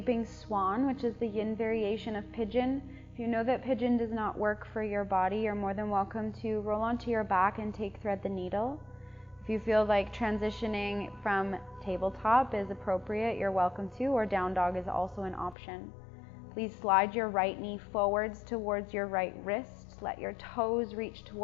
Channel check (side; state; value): right; drops out; at 15.6 s